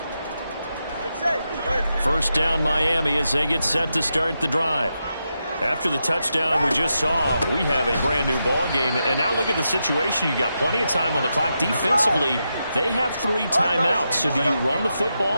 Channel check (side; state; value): both; inverted; correlation -0.86